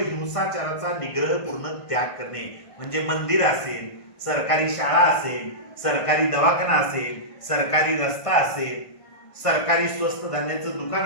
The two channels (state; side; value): late; right; 1.5 ms